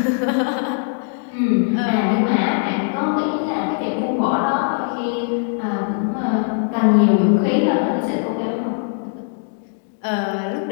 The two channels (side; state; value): right; silent; 65 dB below the other